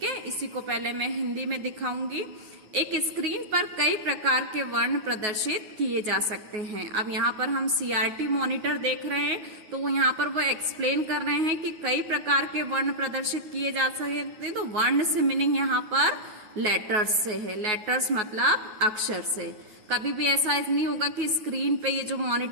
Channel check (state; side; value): late; left; 9.4 ms